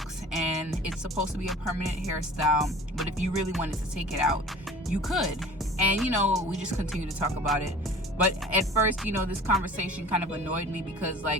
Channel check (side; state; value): both; normal; correlation 0.43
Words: and it's supposed to be a permanent hairstyle. But if you really wanted to take it out, you could. And, you know, we just continue to talk about it. But at first, you know, this conversation kind of annoyed me because,